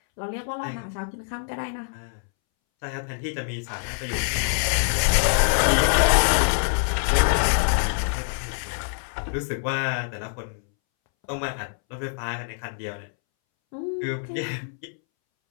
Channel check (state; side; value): silent; right; 62 dB below the other